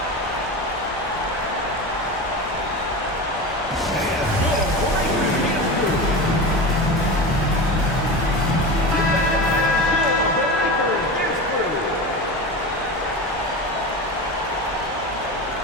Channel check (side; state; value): both; normal; correlation 0.26